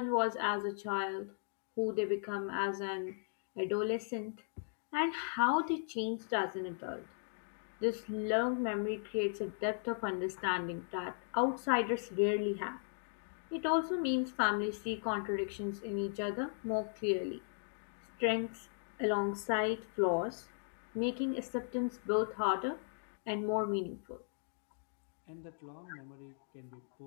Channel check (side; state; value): right; silent; digital silence